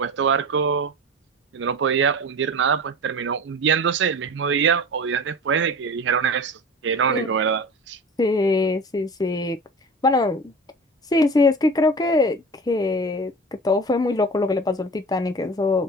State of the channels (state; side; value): normal; both; correlation 0.34